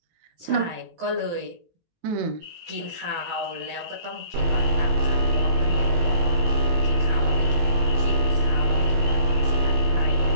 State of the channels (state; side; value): late; left; 18 ms